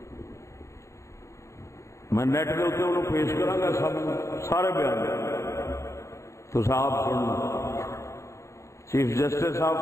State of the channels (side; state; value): right; late; 0.14 ms